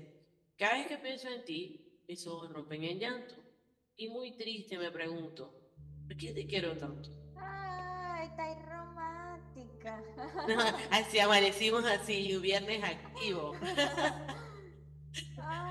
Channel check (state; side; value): identical; both; correlation 1.00